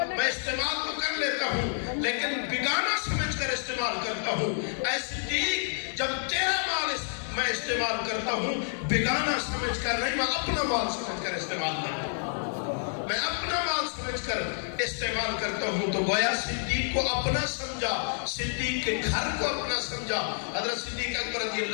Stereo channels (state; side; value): silent; right; digital silence